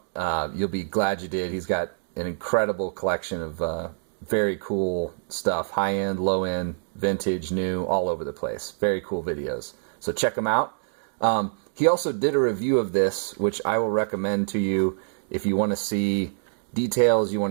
You'll be glad you did. He's got an incredible collection of very cool stuff. High-end, low-end, vintage, new, all over the place. Very cool videos. So check him out. He also did a review of this, which I will recommend to you if you want to see details, you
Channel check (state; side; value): silent; left; digital silence